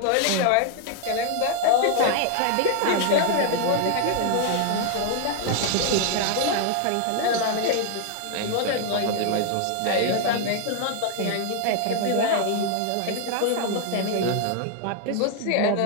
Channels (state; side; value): different; both; correlation 0.00